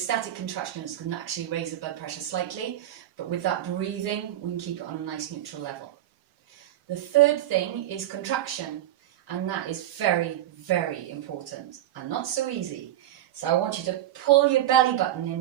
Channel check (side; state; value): left; quieter; 12.9 dB